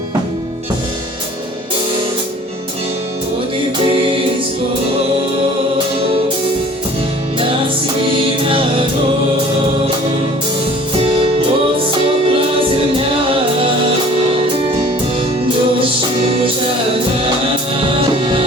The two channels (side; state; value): both; normal; correlation 0.49